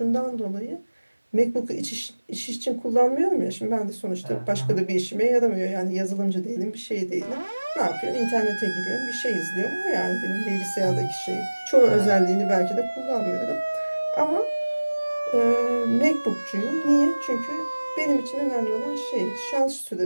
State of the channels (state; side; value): inverted; both; correlation -1.00